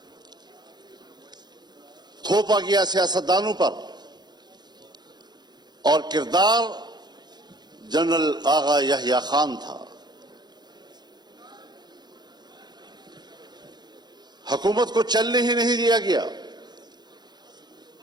تھوپا گیا سیاستدانوں پر اور کردار جنرل آغا یحییٰ خان تھا. حکومت کو چلنے ہی نہیں دیا گیا.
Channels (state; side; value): late; left; 0.20 ms